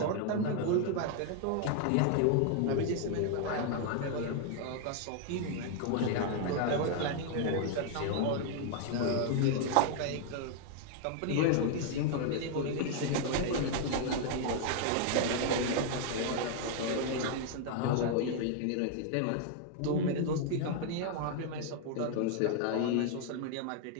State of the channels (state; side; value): different; both; correlation 0.00